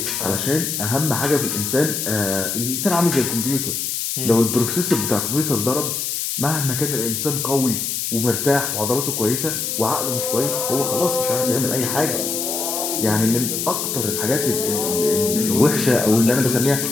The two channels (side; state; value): left; noise; hiss, 2 dB below the sound